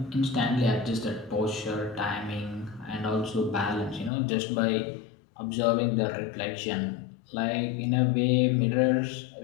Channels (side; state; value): right; drops out; at 4.1 s